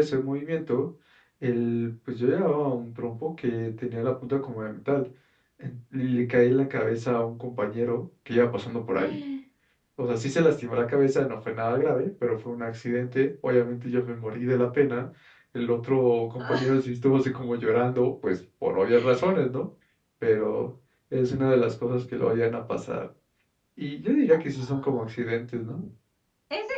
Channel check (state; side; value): identical; both; correlation 1.00